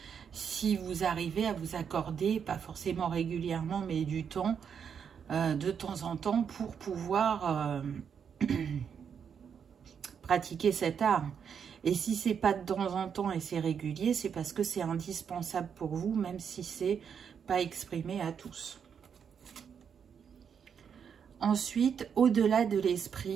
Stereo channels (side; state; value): left; quieter; 7.3 dB